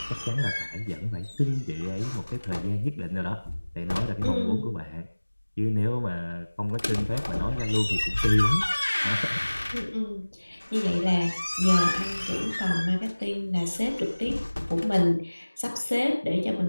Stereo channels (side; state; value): both; inverted; correlation -1.00